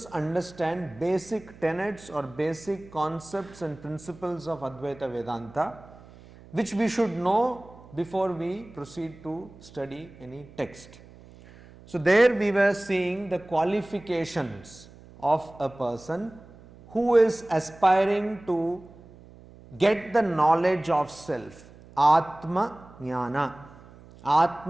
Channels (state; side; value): noise; right; hum, 21 dB below the sound